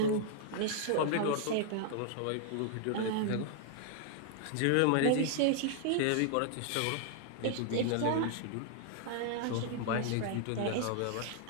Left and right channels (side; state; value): both; different; correlation 0.00